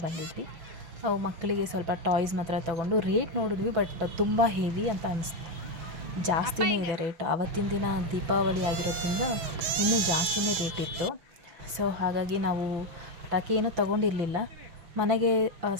ಬಂದಿದ್ವಿ. ಮಕ್ಕಳಿಗೆ ಸ್ವಲ್ಪ ಟಾಯ್ಸ್ ಮಾತ್ರ ತೊಗೊಂಡು ರೇಟ್ ನೋಡಿದ್ವಿ, ಬಟ್ ತುಂಬ ಹೆವಿ ಅಂತ ಅನಿಸ್ತು. ಜಾಸ್ತಿನೇ ಇದೆ ರೇಟ್. ಆವತ್ತಿನ ದಿನ ದೀಪಾವಳಿ ಆಗಿರೋದ್ರಿಂದ ಇನ್ನೂ ಜಾಸ್ತಿನೇ ರೇಟ್ ಇತ್ತು. ಸೊ ಹಾಗಾಗಿ ನಾವು ಪಟಾಕಿ ಏನೂ ತೊಗೊಂಡಿರಲಿಲ್ಲ, ಮನೆಗೆ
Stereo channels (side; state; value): left; late; 6.2 ms